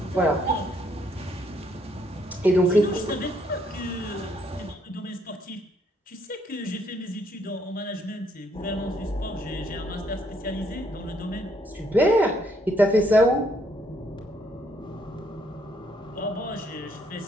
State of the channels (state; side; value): normal; both; correlation 0.70